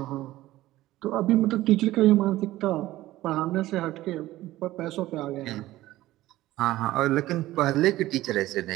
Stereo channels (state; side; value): quieter; left; 16.2 dB